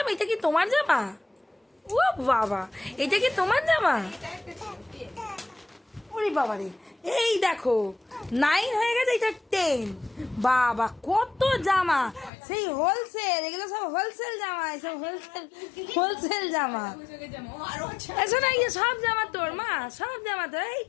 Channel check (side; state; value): right; drops out; at 12.3 s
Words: এটা কি তোমার জামা? ও বাবা, এটা কি তোমার জামা? ওরে বাবা রে, এই দেখো 9 হয়ে গেছে, এটা 10। বাবা কত জামা, সেই হোলসেল, এগুলো সব হোলসেল জামা, সব হোলসেল জামা। এসো না, ইয়ে সব জামা তোর মা, সব জামা তোর। এই